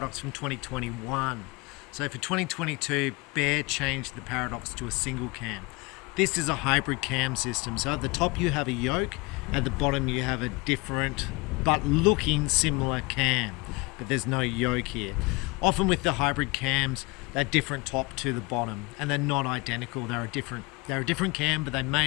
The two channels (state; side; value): quieter; right; 25.4 dB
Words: from 2021. So for 2022, Bear changed the Paradox to a single cam. This is a hybrid cam system. So at the top you have a yoke, at the bottom you have a different but looking similar cam, but there's no yoke here. Often with the hybrid cams, they're different top to the bottom, and they're not identical. They're a different cam, but they